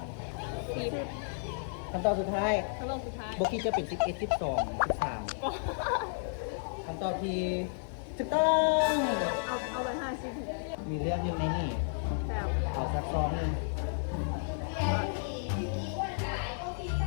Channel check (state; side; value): silent; right; 56 dB below the other